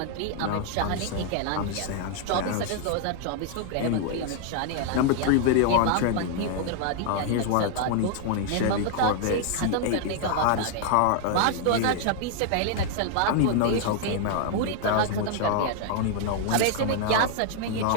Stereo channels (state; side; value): different; both; correlation 0.00